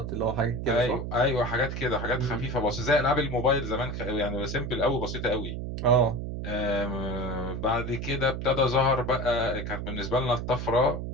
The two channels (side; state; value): right; noise; hum, 5 dB below the sound